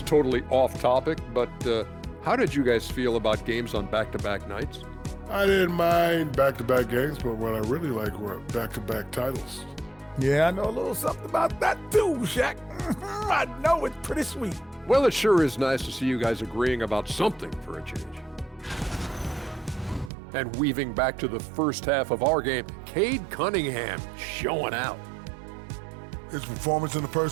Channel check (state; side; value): drops out; left; at 20.1 s